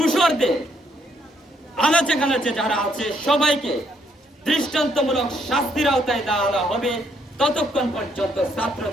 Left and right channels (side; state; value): both; normal; correlation 0.72